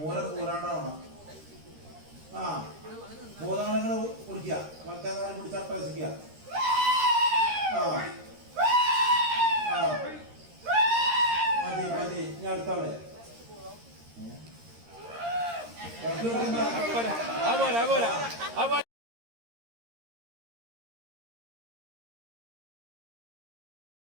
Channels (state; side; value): late; left; 13 ms